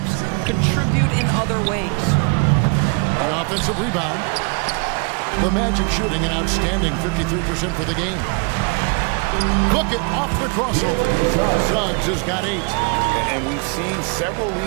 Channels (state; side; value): quieter; left; 34.3 dB